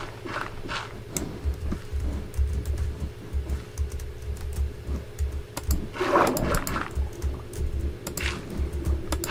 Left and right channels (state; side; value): identical; both; correlation 1.00